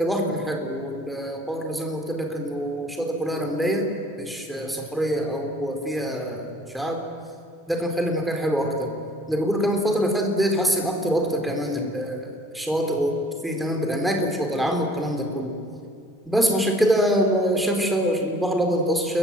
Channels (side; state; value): both; normal; correlation 0.54